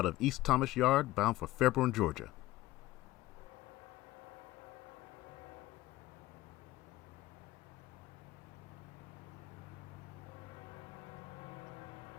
of East Thomas Yard, bound for Fairborn, Georgia.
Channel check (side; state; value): right; quieter; 17.1 dB